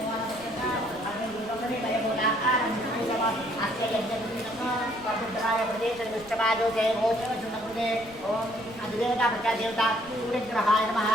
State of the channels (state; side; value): noise; right; rumble, 22 dB below the sound